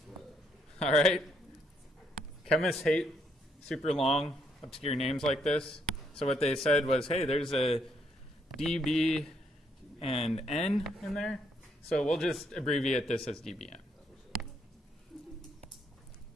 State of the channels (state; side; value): normal; both; correlation 0.73